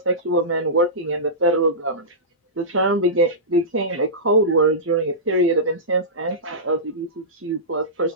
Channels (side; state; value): both; normal; correlation -0.17